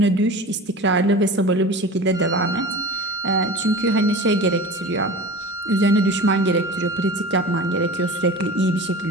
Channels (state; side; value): normal; both; correlation 0.35